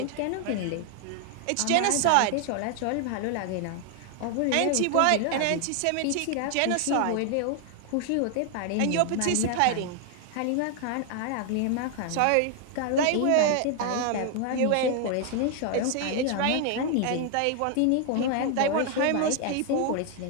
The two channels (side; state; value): both; different; correlation 0.00